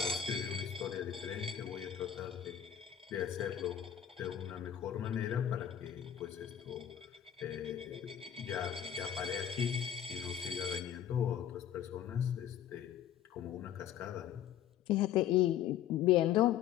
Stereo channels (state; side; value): quieter; right; 10.1 dB